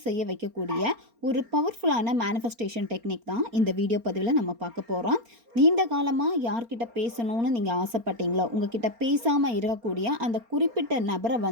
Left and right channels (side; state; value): left; late; 4.3 ms